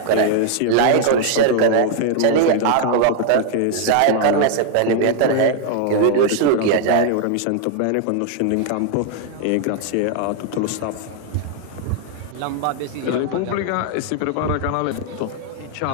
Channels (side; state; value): both; different; correlation 0.00